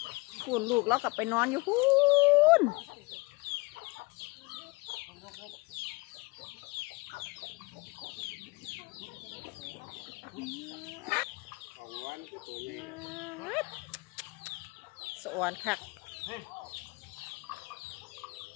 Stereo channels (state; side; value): quieter; right; 25.7 dB